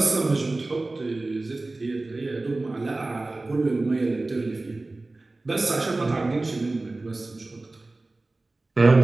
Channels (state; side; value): quieter; left; 3.1 dB